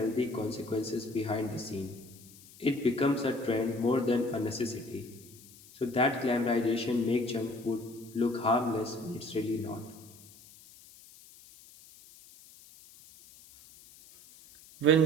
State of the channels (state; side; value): noise; left; hiss, 22 dB below the sound